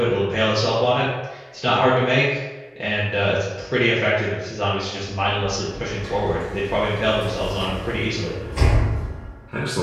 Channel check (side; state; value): both; identical; correlation 1.00